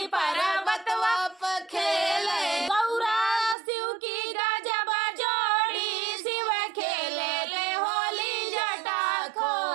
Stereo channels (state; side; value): drops out; left; at 3.6 s